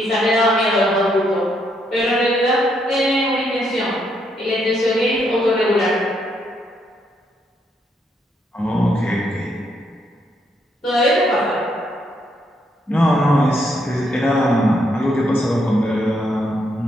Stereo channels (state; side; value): normal; both; correlation 0.75